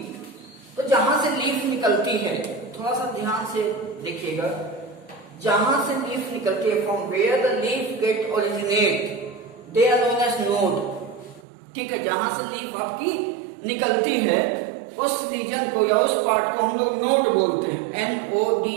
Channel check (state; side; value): drops out; left; at 11.5 s